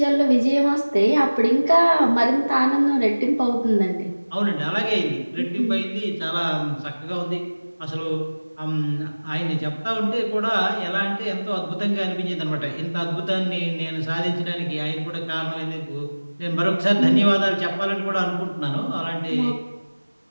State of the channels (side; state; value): both; inverted; correlation -1.00